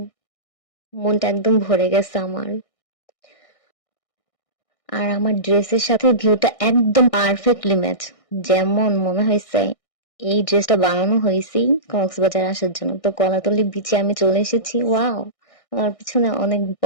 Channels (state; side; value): late; right; 1.6 ms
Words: মনটা একদম ভরে গেছে আমার। আর আমার ড্রেসের সাথে ভিউটা একদম পারফেক্টলি ম্যাচ। যেমন মনে হয়েছে এই ড্রেসটা বানানো হয়েছে কক্সবাজার আসার জন্য। তো কলাতলি বিচে আমি চলে এসেছি। ওয়াও, আমার পিছনে অনেক